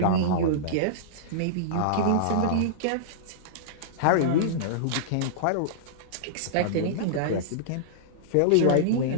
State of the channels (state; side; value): different; both; correlation -0.02